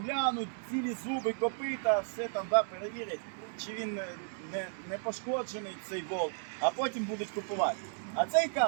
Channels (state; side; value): silent; left; digital silence